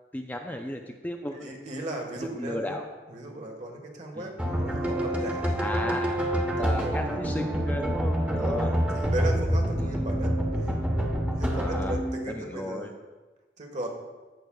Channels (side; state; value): both; normal; correlation 0.80